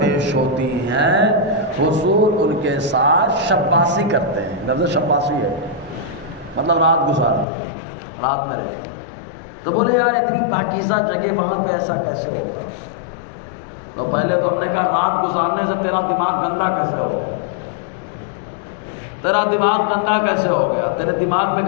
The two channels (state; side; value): drops out; right; at 7.5 s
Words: ہوتی ہیں، حضور ان کے ساتھ شباسی کرتے ہیں۔ لفظ شباسی ہے مطلب رات گزارتے ہیں، رات میں رہتے ہیں۔ تو بولے یار اتنی پاکیزہ جگہ وہاں پہ ایسا کیسے ہوگا؟ تو پہلے تو ہم نے کہا رات گزارنے سے تیرا دماغ گندا کیسے ہو گیا؟ تیرا دماغ گندا کیسے ہو گیا؟ تیرے دماغ میں